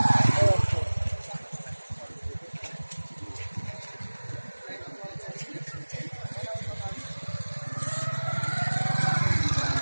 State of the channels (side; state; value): both; inverted; correlation -1.00